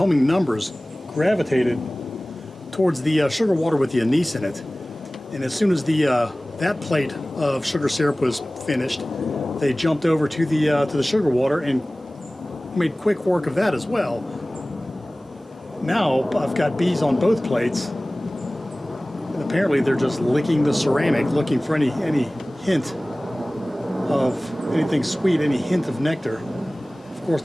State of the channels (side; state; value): both; normal; correlation 0.98